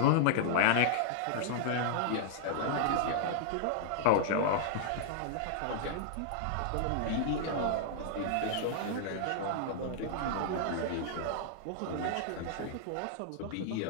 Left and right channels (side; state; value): both; different; correlation -0.01